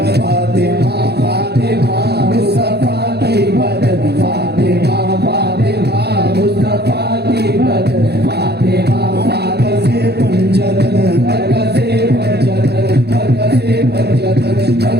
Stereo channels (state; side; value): late; left; 0.48 ms